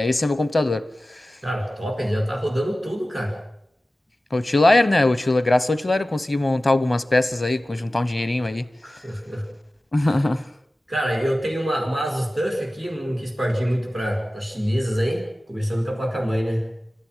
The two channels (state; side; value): normal; both; correlation 0.96